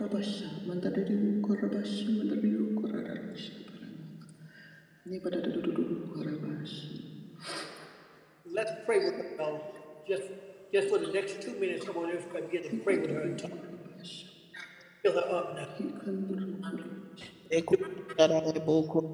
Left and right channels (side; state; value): both; identical; correlation 1.00